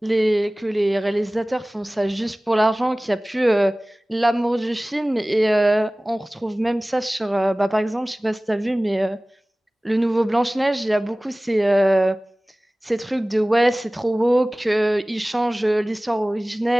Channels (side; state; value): both; normal; correlation 0.98